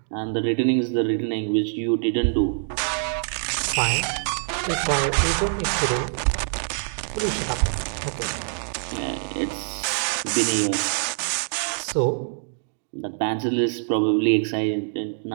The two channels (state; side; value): silent; left; digital silence